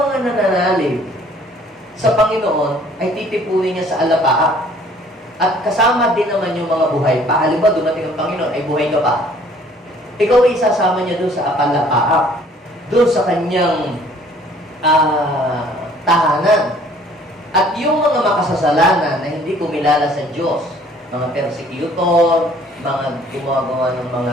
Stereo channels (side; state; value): both; normal; correlation 0.56